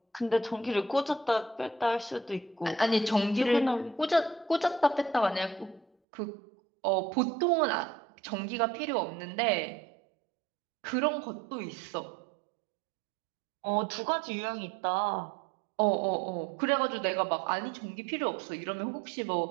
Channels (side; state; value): left; drops out; at 5.9 s